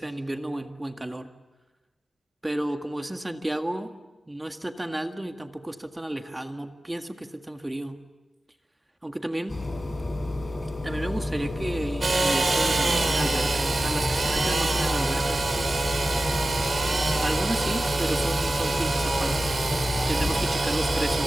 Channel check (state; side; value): normal; both; correlation 0.95